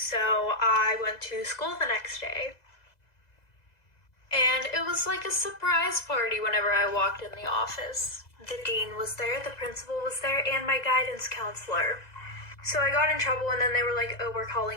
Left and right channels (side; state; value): right; late; 2.0 ms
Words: I went to school the next day. And it was like a surprise party whenever I walked in the office. The dean was there, the principal was there, and my guidance counselor. So I got in trouble and then they were like, oh, we're